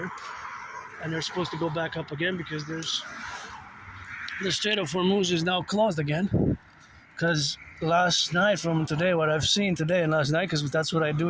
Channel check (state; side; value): identical; both; correlation 1.00